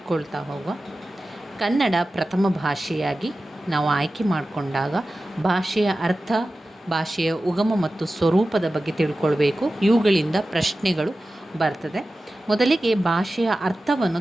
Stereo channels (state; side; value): normal; both; correlation 0.95